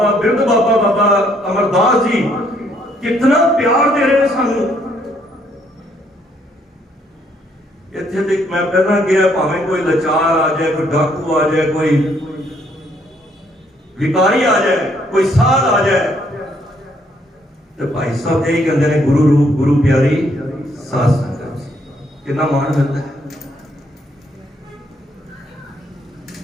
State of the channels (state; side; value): normal; both; correlation 0.69